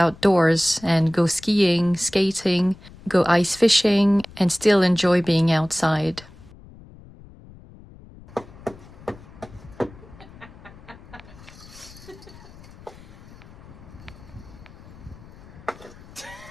and go skiing, skating, go ice fishing, and still enjoy being outside. I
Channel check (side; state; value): left; noise; rumble, 20 dB below the sound